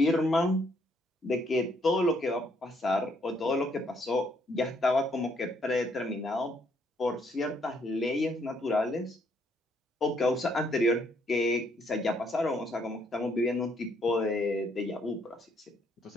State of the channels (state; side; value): normal; both; correlation 0.70